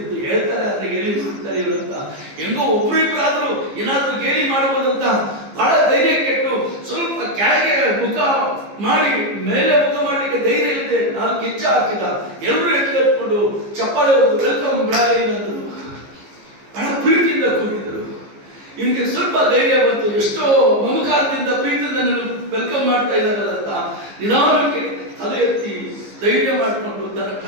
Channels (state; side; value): late; left; 15 ms